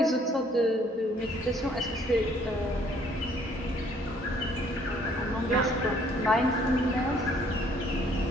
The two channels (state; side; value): normal; both; correlation 0.62